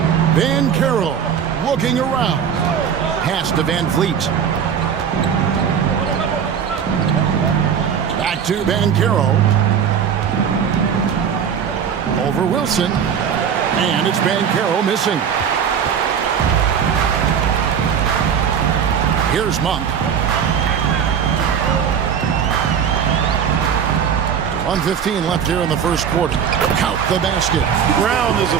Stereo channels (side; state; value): left; quieter; 7.7 dB